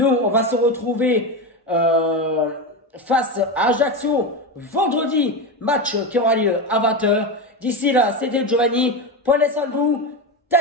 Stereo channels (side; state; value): both; normal; correlation 0.17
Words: on va se retrouver face à Ajaccio vendredi, match qui aura lieu à 20h. D'ici là, c'était Giovanni. Prenez soin de vous.